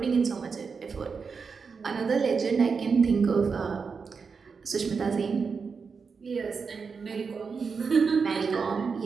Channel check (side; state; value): left; quieter; 5.3 dB